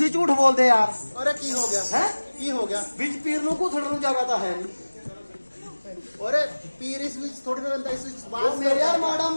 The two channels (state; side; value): inverted; both; correlation -1.00